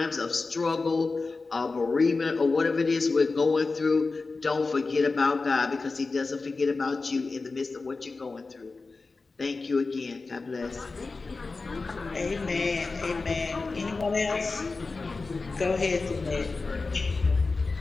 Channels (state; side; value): quieter; right; 3.9 dB